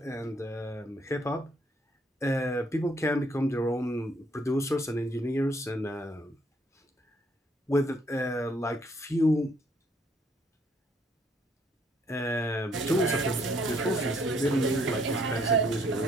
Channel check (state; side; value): normal; both; correlation 0.67